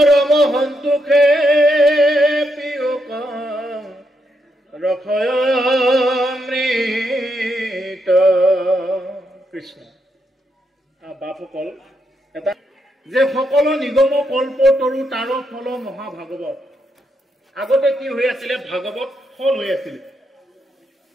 সন্তোষে পিয়ুক ৰসয়মৃত কৃষ্ণ বাপসকল এটা যে সকলো নিগম কল্প তৰু তাৰ ফল মহাভাগৱত আগতে কি হৈ আছিলে ভাগৱত ফল হৈ আছিলে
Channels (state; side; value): normal; both; correlation 0.80